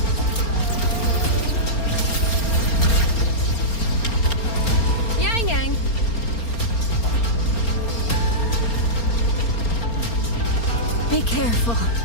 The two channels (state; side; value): late; right; 4.3 ms